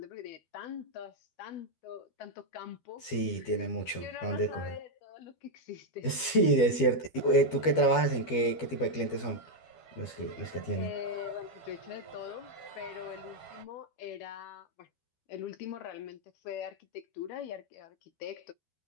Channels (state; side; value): late; right; 12 ms